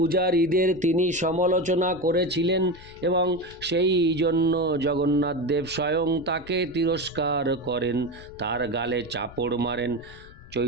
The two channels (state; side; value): noise; left; rumble, 19 dB below the sound